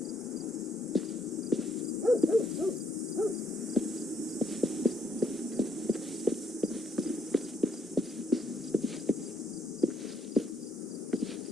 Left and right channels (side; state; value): both; normal; correlation 0.70